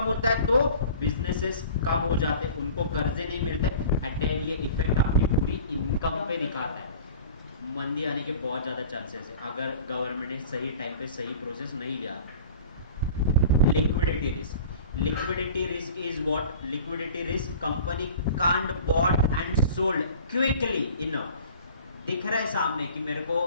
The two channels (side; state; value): both; inverted; correlation -0.42